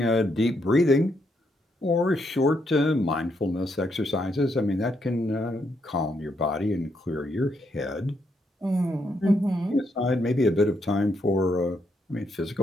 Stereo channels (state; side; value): normal; both; correlation 0.77